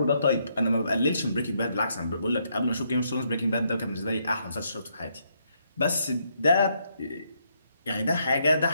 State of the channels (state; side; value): inverted; both; correlation -0.75